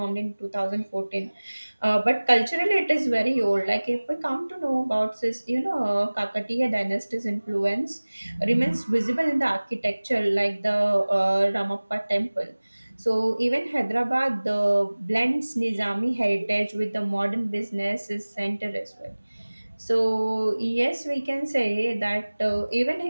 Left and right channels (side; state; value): both; inverted; correlation -1.00